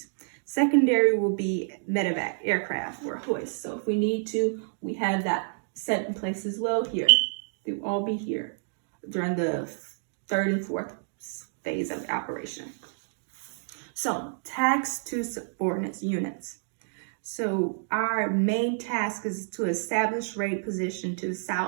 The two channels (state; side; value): silent; left; digital silence